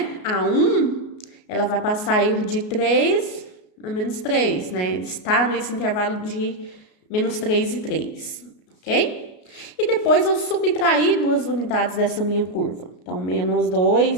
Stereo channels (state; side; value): late; right; 33 ms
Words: a 1, ela vai passar a ir de 3 a menos 3, né? Está nesse intervalo de menos 3 e 3, ok? E depois eu subtraí duas unidades dessa minha curva. Então, menos